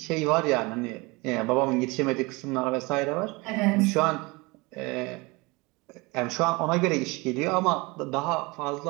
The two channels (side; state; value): left; quieter; 25.1 dB